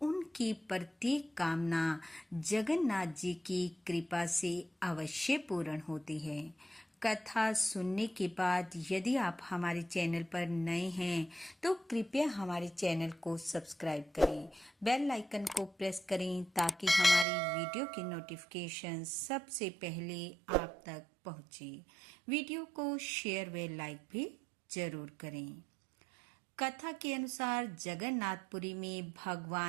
उनकी प्रत्येक कामना जगन्नाथ जी की कृपा से अवश्य पूर्ण होती है। कथा सुनने के बाद यदि आप हमारे चैनल पर नए हैं तो कृपया हमारे चैनल को सब्सक्राइब करें, बेल आइकन को प्रेस करें ताकि हमारी वीडियो की नोटिफिकेशन सबसे पहले आप तक पहुंचे। वीडियो को शेयर व लाइक भी जरूर करें। कथा के अनुसार जगन्नाथपुरी में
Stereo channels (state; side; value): drops out; left; at 17.2 s